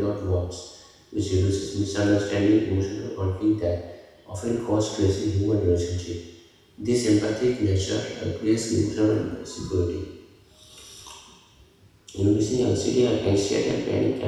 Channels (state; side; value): identical; both; correlation 1.00